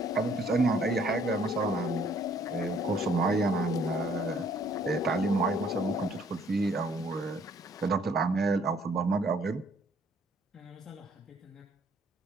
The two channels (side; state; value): both; normal; correlation 0.62